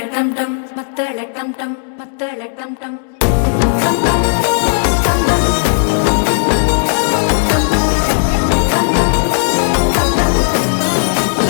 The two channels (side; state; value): right; silent; digital silence